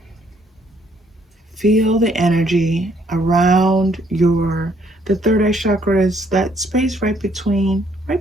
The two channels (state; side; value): normal; both; correlation 0.67